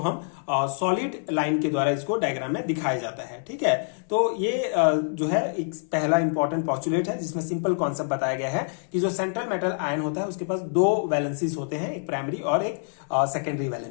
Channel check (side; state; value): right; silent; 61 dB below the other